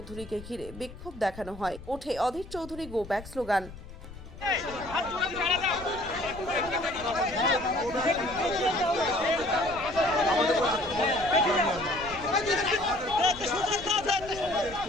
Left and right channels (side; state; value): left; noise; rumble, 16 dB below the sound